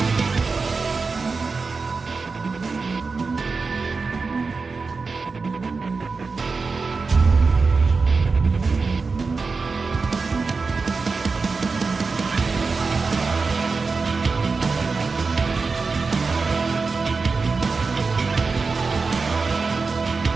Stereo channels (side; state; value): left; quieter; 4.4 dB